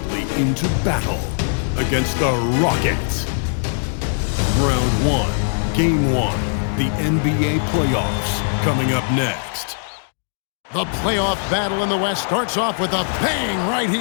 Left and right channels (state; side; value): silent; right; digital silence